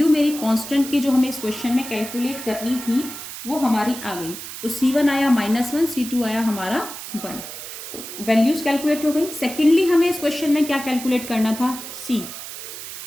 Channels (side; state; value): right; noise; hiss, 10 dB below the sound